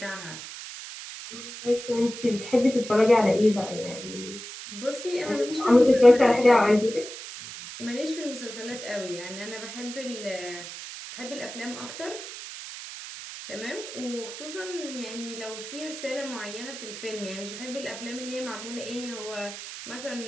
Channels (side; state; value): right; noise; hiss, 11 dB below the sound